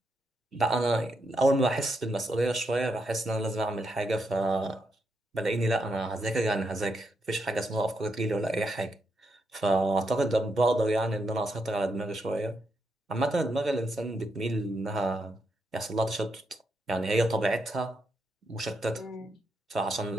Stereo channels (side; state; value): both; normal; correlation 0.81